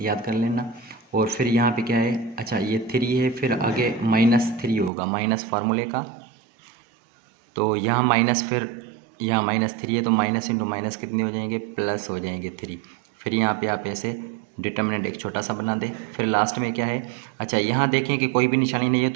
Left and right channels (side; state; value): left; drops out; at 4.9 s